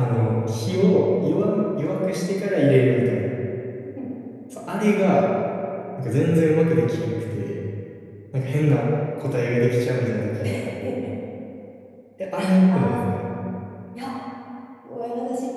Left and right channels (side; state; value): both; identical; correlation 1.00